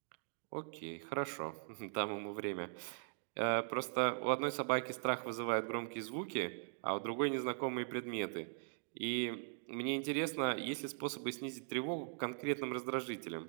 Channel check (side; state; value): left; silent; digital silence